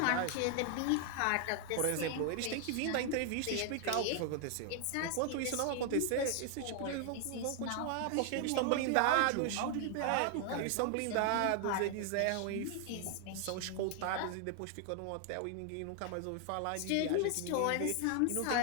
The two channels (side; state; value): both; different; correlation 0.00